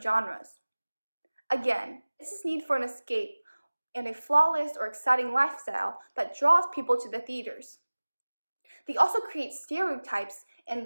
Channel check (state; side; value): inverted; both; correlation -1.00